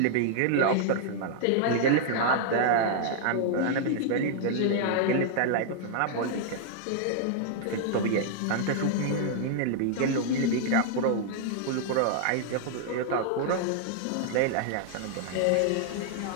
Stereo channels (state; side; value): different; both; correlation -0.01